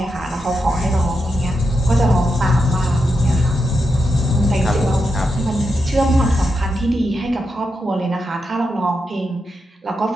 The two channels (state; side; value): normal; both; correlation 0.86